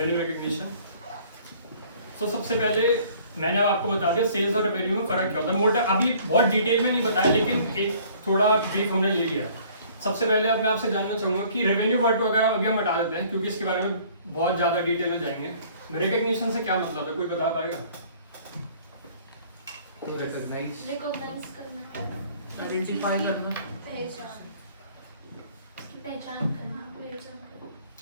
रिकग्निशन। तो सबसे पहले मैंने अब आपको बता दिया सेल्स और रेवेन्यू में फर्क क्या होता है, मोटा अभी बहुत डिटेल में नहीं बताया लेकिन एक थोड़ा ब्रीफ हमने ले लिया। सबसे पहले अब मैं आपसे जानना चाहूंगा कि रेवेन्यू वर्ड वगैरह अभी हम हटा देते हैं क्योंकि इसके बारे में बहुत ज़्यादा डिटेल में जाएंगे। रिकग्निशन से क्या मतलब है, कोई बता पाएगा? रिकॉग्नाइज करना, आइडेंटिफाई करना, पहचान करना।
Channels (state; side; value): inverted; both; correlation -0.55